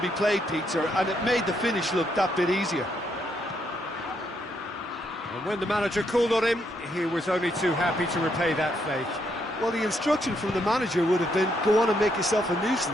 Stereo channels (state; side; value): normal; both; correlation 0.76